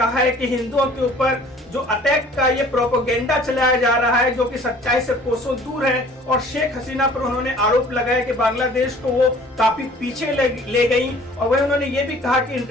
है कि हिंदुओं के ऊपर जो अटैक का ये प्रोपेगेंडा चलाया जा रहा है, जो कि सच्चाई से कोसों दूर है, और शेख हसीना पर उन्होंने आरोप लगाया कि बांग्लादेश को वो काफी पीछे ले गई। और वही उन्होंने ये भी कहा कि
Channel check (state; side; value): normal; both; correlation 0.51